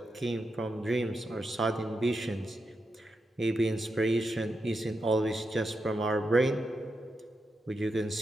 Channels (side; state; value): both; normal; correlation 0.86